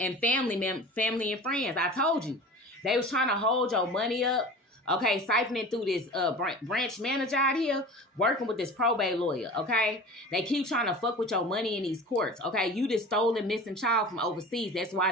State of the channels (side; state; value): both; normal; correlation 0.37